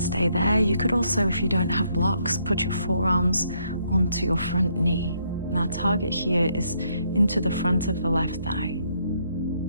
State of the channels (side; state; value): both; inverted; correlation -0.72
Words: there. You could also, if you don't have blocks, put your forearms onto your front knee. Now target here is into the front of the left thigh.